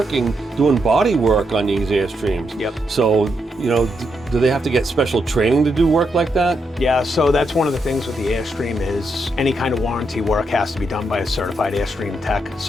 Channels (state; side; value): normal; both; correlation 0.81